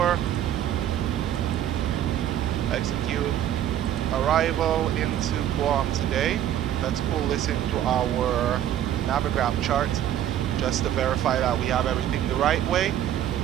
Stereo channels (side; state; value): left; quieter; 11.2 dB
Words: Execute. Arrival into Guam today. Let's pull this into our Navigram chart just to verify that we have everything the right way.